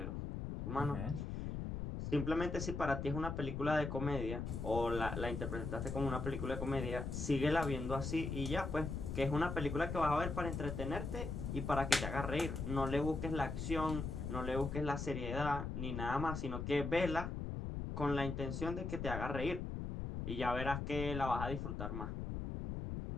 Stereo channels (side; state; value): left; noise; rumble, 4 dB below the sound